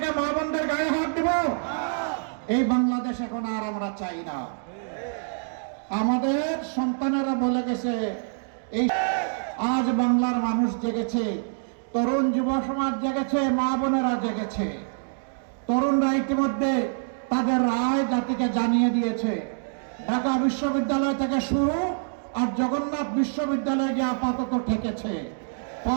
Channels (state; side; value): silent; left; digital silence